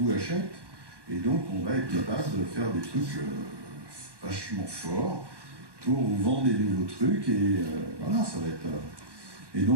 achètent, et donc on va être capable de faire des trucs vachement forts pour vous vendre des nouveaux trucs, et voilà, ça va être... Et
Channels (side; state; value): left; late; 1.2 ms